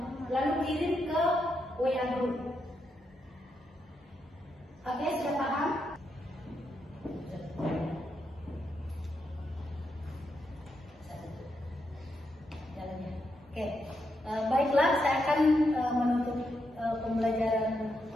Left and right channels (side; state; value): both; normal; correlation 0.82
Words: Lalu kirim ke WA group. Oke, sudah paham? Oke, baiklah, saya akan menutup pembelajaran